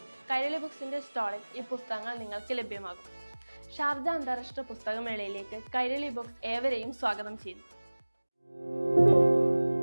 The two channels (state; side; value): inverted; both; correlation -1.00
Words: കൈരളി ബുക്സിന്റെ സ്റ്റാളിൽ ഈ പുസ്തകങ്ങൾ നിങ്ങൾക്ക് ലഭ്യമാകും. ഷാർജ അന്താരാഷ്ട്ര പുസ്തകമേളയിലേക്ക് കൈരളി ബുക്സ് ഏവരെയും സ്വാഗതം ചെയ്യുന്നു.